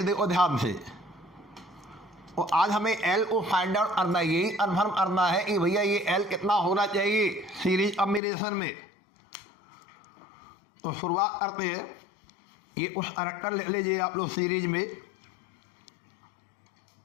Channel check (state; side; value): drops out; right; at 8.2 s